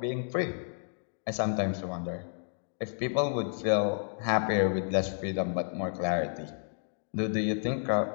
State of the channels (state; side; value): silent; right; digital silence